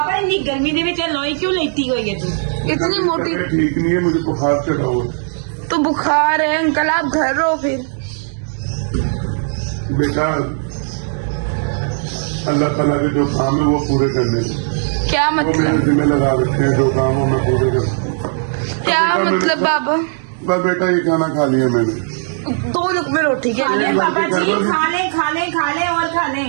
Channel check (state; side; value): silent; left; digital silence